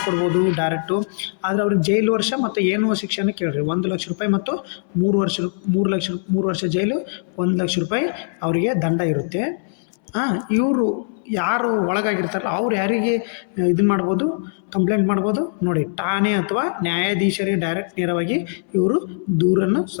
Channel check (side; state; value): right; silent; 65 dB below the other